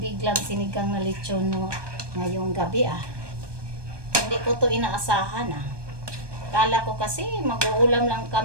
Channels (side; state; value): left; late; 1.2 ms